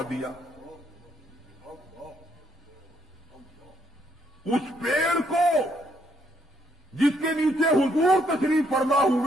دیا۔ اس پیڑ کو جس کے نیچے حضور تشریف فرما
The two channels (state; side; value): normal; both; correlation 0.72